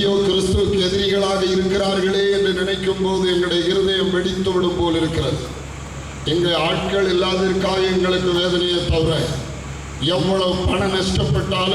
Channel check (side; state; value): both; identical; correlation 1.00